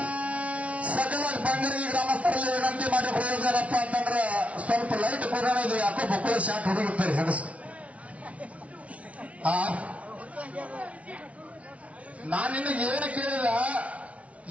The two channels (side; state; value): left; late; 0.065 ms